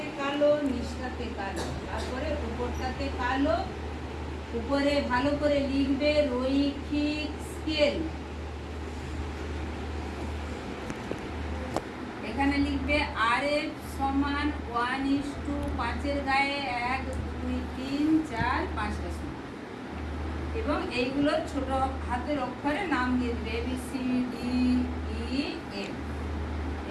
কালো, নিচটাতে কালো, তারপরে উপরটাতে কালো। উপরে ভালো করে লিখবে রৈখিক স্কেল, এখানে লিখবে RF সমান 1:5 এর গায়ে 1, 2, 3, 4, 5টা সমান, এবং এইগুলোর ছোট হাতের অক্ষরে নাম দিয়ে দিবে ABCDEF,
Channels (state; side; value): identical; both; correlation 1.00